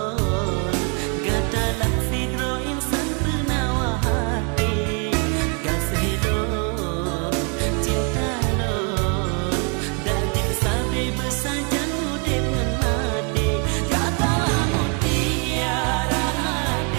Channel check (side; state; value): left; quieter; 37.3 dB